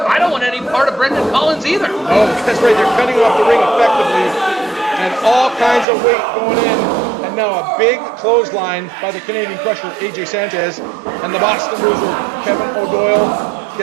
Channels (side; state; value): left; drops out; at 5.9 s